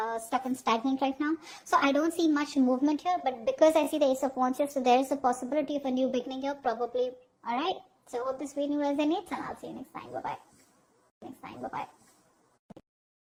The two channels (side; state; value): both; identical; correlation 1.00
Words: stuck and stagnant right now. So I don't see much movement here, but because I see the Ace of Wands here, so there is a possibility of a new beginning here, probably. All right. So hope this video resonates, and I'll see you next time. Bye bye.